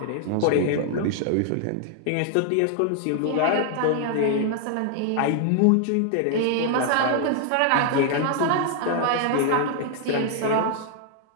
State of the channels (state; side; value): different; both; correlation 0.00